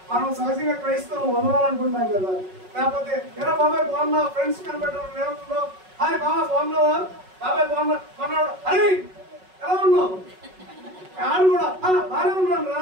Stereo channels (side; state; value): left; late; 5.4 ms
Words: మనం సహజంగా క్రైస్తవం వదలాలనుకుంటాం కదా. లేకపోతే ఎలా బాబాయ్ బాగున్నా, ఫ్రెండ్స్ కనబెట్టడం ఏమవుతుందో, హాయ్ బాబా బాగున్నావా, బాబాయ్ బాగున్నా కొన్నాడు, అరే ఎలా ఉన్నావు, ఆడు కూడా బాగానే ఉన్నాను